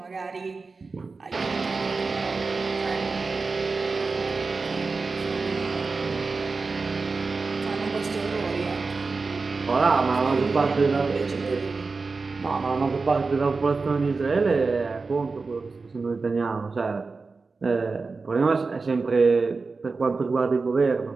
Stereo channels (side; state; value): left; quieter; 4.2 dB